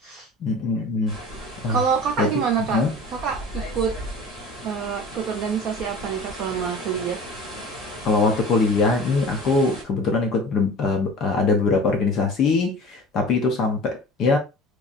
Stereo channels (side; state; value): both; normal; correlation 0.40